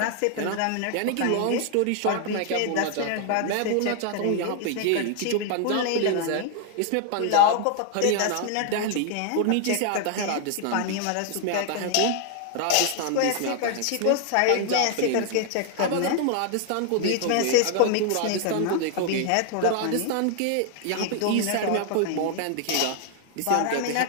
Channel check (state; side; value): different; both; correlation 0.00